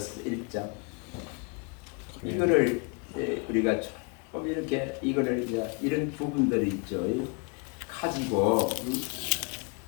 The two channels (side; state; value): right; quieter; 33.1 dB